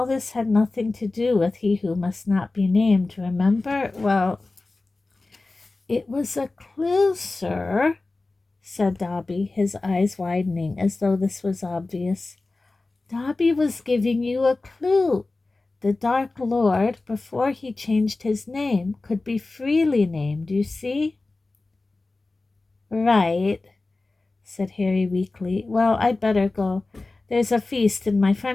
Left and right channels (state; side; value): quieter; right; 3.3 dB